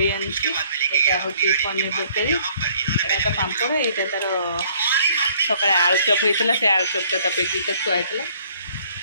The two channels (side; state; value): both; inverted; correlation -0.60